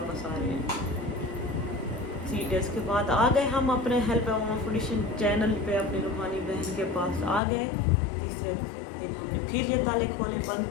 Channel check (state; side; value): drops out; right; at 7.4 s